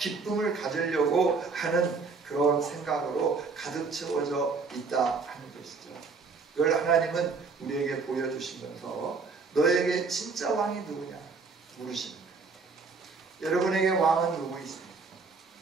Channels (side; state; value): left; quieter; 4.6 dB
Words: 가지려고 하는 그런 생각으로 가득 채워져 있다 하는 것이죠. 이걸 하나님은 우리에게 보여주시면서 너에게 진짜 왕이 누구냐 물으시는 거예요. 여러분에게 왕은 누구 있습니까?